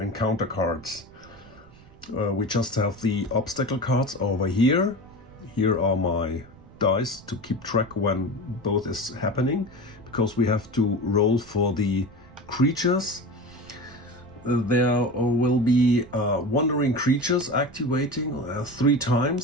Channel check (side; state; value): right; noise; rumble, 24 dB below the sound